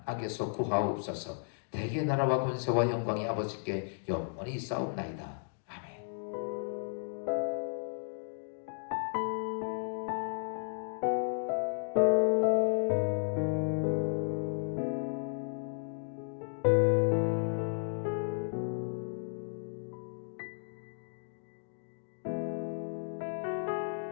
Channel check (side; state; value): right; silent; digital silence